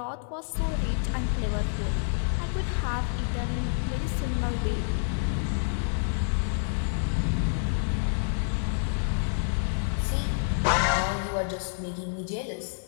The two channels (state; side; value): silent; right; digital silence